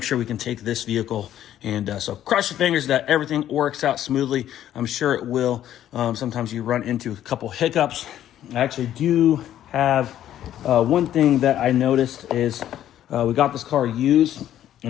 sure we can take this vehicle. And so cross your fingers that everything works out smoothly. I'm sure it will. Sometimes you run into a couple hiccups. I actually do have one thing that I noticed is we got this car used,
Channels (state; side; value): quieter; right; 11.6 dB